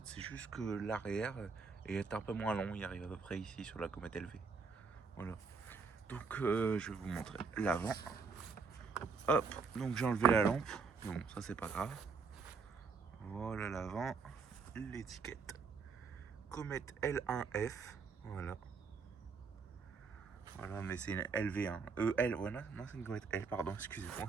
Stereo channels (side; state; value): left; quieter; 5.1 dB